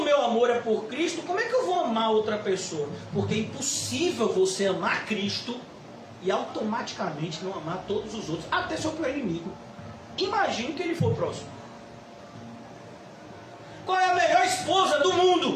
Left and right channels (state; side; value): identical; both; correlation 1.00